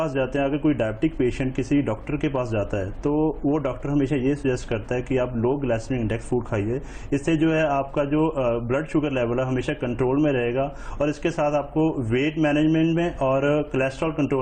जाते हैं, अगर कोई डायबिटिक पेशेंट किसी डॉक्टर के पास जाता है तो वो डॉक्टर हमेशा ये सजेस्ट करता है कि आप लो ग्लाइसेमिक इंडेक्स फूड खाइए। इससे जो है आपका जो ब्लड शुगर लेवल है हमेशा कंट्रोल में रहेगा और इसके साथ आपको वेट मैनेजमेंट में और कोलेस्ट्रॉल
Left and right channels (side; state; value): both; identical; correlation 1.00